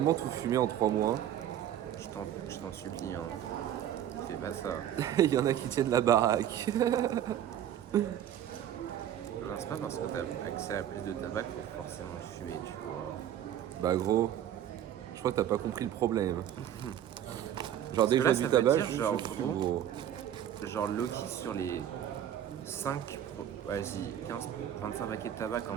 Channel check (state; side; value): quieter; left; 10.8 dB